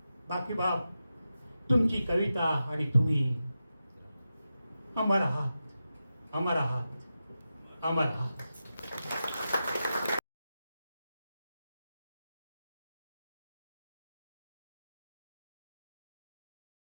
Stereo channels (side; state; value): both; inverted; correlation -0.90